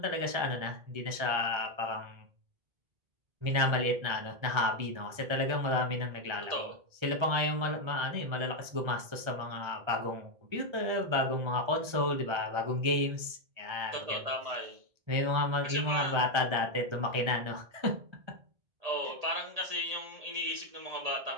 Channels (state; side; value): late; left; 1.3 ms